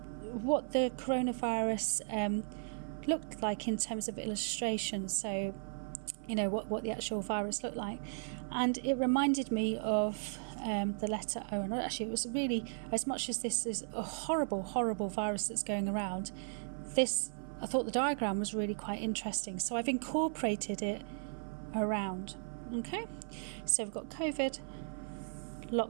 what the coronavirus looked like in terms of illustration, so you know what the actual virus looked like, and it reminded me of the letter O. And actually it was really, as much as this is a horrible virus that's going around, I thought the diagram was really quite interesting, so I've incorporated it around. Okay, so we've got COVID,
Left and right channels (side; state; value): left; silent; 54 dB below the other